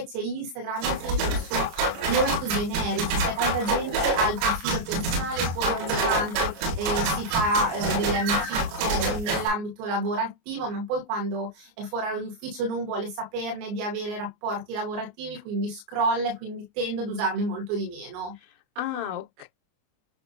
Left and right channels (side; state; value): left; late; 24 ms